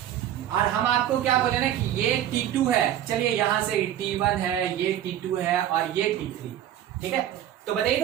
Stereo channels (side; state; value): left; quieter; 11.4 dB